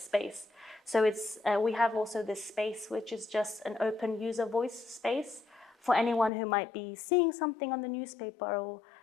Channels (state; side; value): drops out; right; at 6.3 s